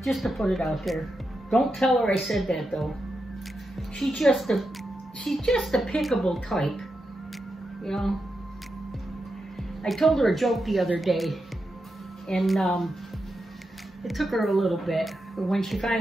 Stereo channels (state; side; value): normal; both; correlation 0.87